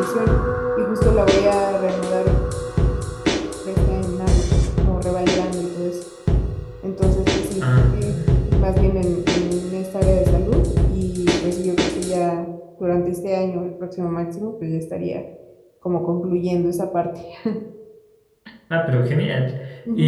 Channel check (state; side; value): identical; both; correlation 1.00